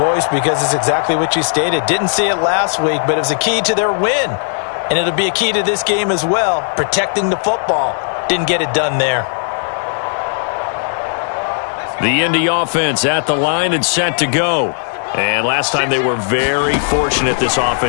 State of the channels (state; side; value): silent; right; 69 dB below the other